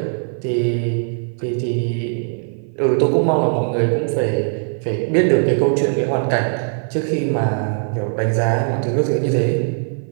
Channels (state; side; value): silent; left; 57 dB below the other